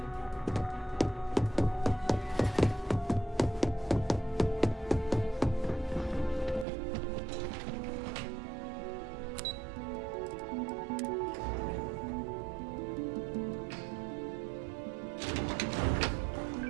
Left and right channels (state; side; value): drops out; left; at 6.7 s